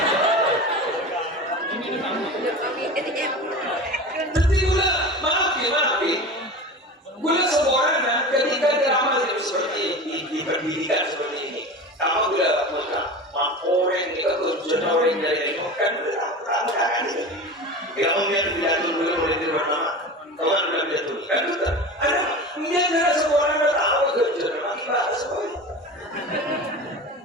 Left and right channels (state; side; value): normal; both; correlation 0.31